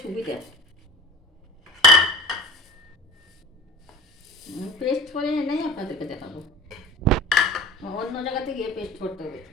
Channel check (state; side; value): normal; both; correlation 0.38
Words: সুবিধা। পেস্ট করে এনেই আপনাদেরকে দেখাবো, অন্য জায়গাতে গিয়ে পেস্ট করতে হবে।